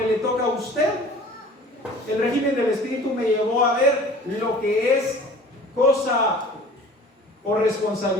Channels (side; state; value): both; normal; correlation 0.46